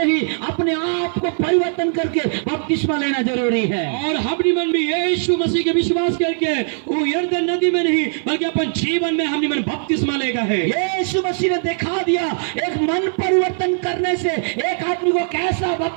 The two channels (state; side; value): silent; left; 58 dB below the other